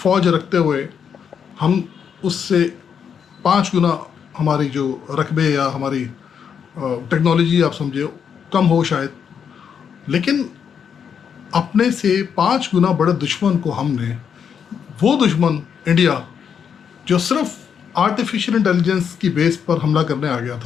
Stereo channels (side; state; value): right; quieter; 7.4 dB